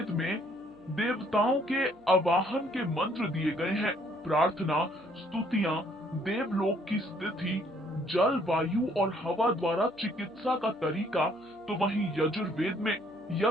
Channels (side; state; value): right; noise; hum, 29 dB below the sound